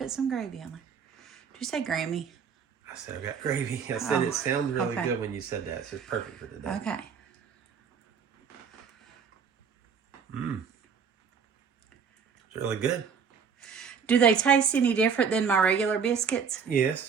some gravy on there. Did you say Grammy? I said I got gravy. I said it sounds really okay. good when you said that. So it's perfect for today. Okay. It's really good. Do they taste any different than my regular biscuits?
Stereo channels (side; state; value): left; quieter; 6.4 dB